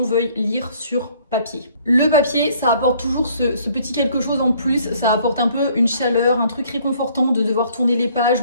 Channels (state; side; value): inverted; both; correlation -0.60